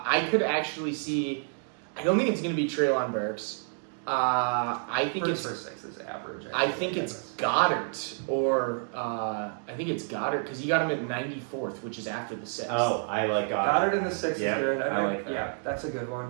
could actually see. I don't think it's going to be Treylon Burks. I think Burks it's. for 6 is average. I think it's Goddard or I think it's Goddard because you got him at 94th, which is after the 6th. Oh, I like Goddard in the 6th Yeah, is good. I like that. Yeah, that's a good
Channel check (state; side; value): silent; left; 58 dB below the other